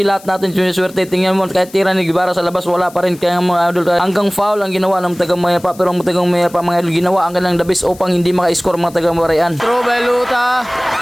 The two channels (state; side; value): noise; left; hiss, 22 dB below the sound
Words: lahat natin siniswerte. Tingnan mo, kahit tira ni Guevara sa labas, wala pa rin. Kaya mga idol, hanggang foul ang ginawa ng tagang Mayapa, pero ang tagang Mayapa mga idol, ginawa ang kanilang dabis upang hindi maka-score mga tagang Parian. Throw by Luta,